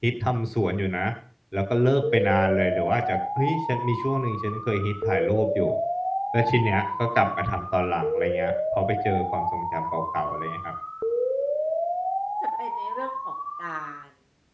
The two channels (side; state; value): both; identical; correlation 1.00